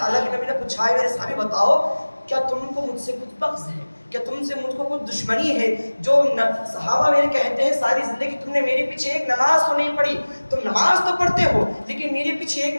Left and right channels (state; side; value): inverted; both; correlation -1.00